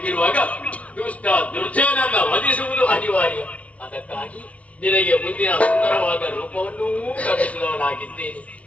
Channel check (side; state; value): right; late; 0.066 ms